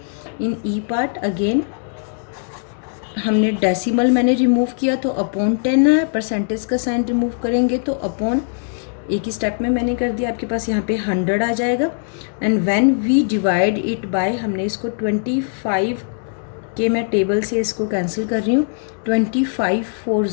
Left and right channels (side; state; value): right; silent; digital silence